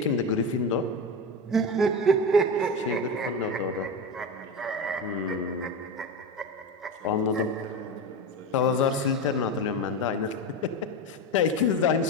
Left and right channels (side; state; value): both; normal; correlation 0.21